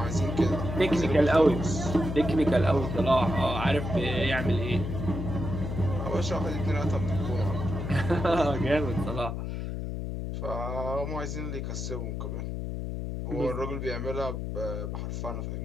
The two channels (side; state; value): left; noise; hum, 4 dB below the sound